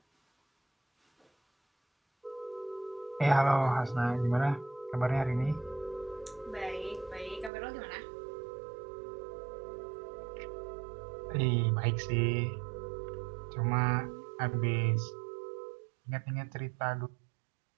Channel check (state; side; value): drops out; left; at 7.5 s